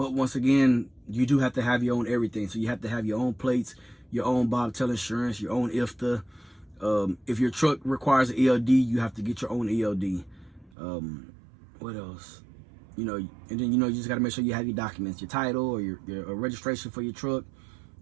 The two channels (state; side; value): drops out; left; at 10.7 s